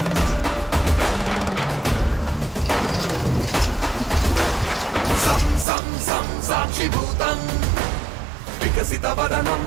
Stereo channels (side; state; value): left; drops out; at 5.7 s